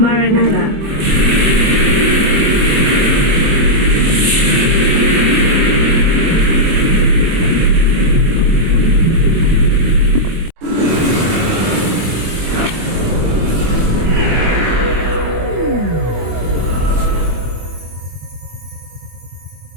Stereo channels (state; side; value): late; left; 24 ms